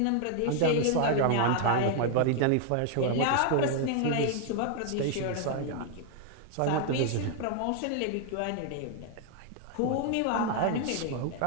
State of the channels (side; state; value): both; different; correlation 0.00